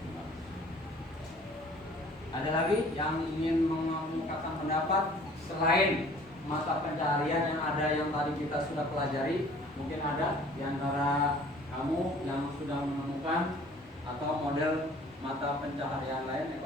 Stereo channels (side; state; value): both; normal; correlation 0.52